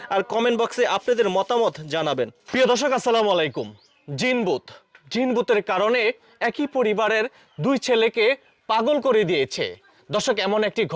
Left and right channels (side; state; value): both; identical; correlation 1.00